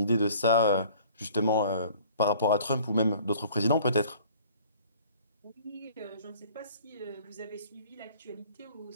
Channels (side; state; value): both; inverted; correlation -0.52